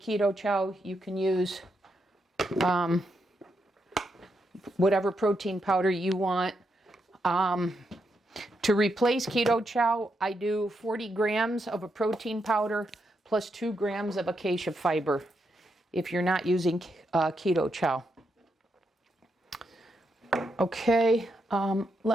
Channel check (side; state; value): both; normal; correlation 0.82